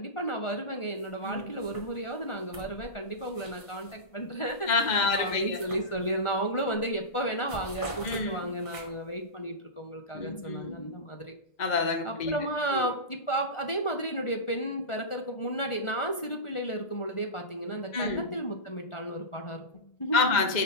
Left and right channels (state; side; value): late; right; 1.4 ms